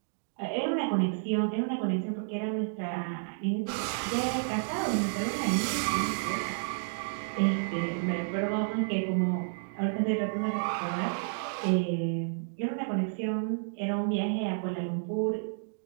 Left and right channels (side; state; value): left; silent; digital silence